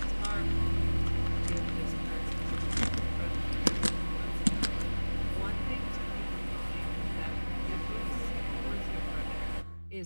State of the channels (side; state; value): both; inverted; correlation -1.00